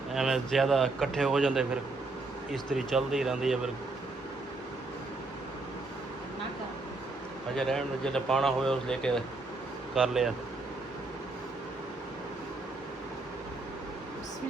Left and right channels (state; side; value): quieter; left; 3.3 dB